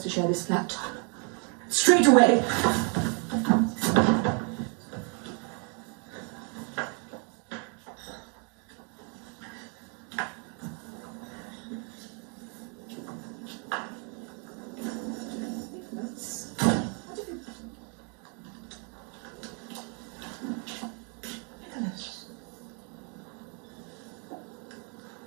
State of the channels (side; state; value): left; quieter; 37.9 dB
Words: to share this flat. Straight away.